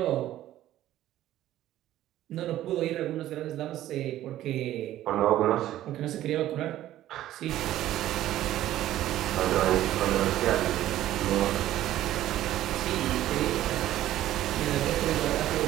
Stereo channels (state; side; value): quieter; left; 13.6 dB